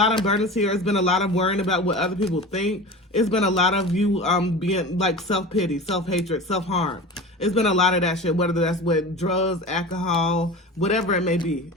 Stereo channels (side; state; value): both; normal; correlation 0.33